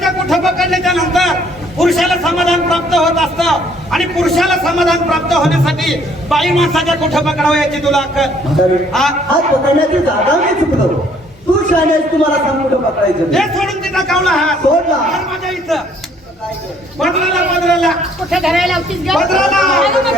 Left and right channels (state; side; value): normal; both; correlation 0.62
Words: कुठं पकडल्याच्या नंतर पुरुषाला समाधान प्राप्त होत असतं आणि पुरुषाला समाधान प्राप्त होण्यासाठी बाई माणसाच्या कुठं पकडावं याची तुला अक्कल म्हातारी, हा? हात पकडण्याची जागा मी चुकलो. तू शाळेत तुम्हाला सांग कुठं पकडायचं हे ते. सोडून तिचा कावला हात सोडला. हात माझ्या इथं बदलाला कुठे धरायला लावतीस गं? पदराला. अगं, मग